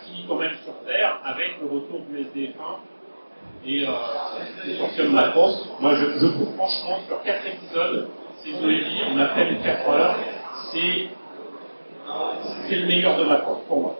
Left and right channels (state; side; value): inverted; both; correlation -1.00